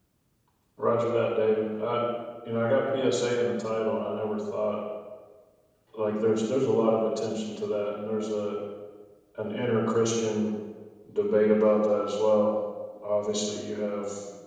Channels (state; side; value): identical; both; correlation 1.00